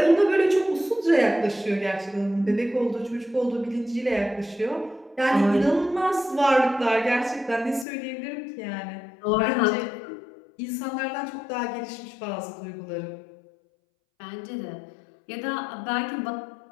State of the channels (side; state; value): right; drops out; at 7.9 s